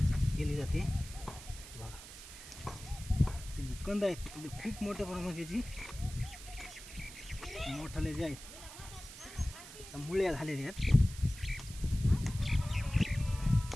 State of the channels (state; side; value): noise; right; hiss, 14 dB below the sound